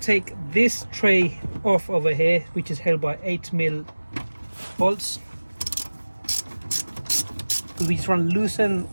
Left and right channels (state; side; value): inverted; both; correlation -1.00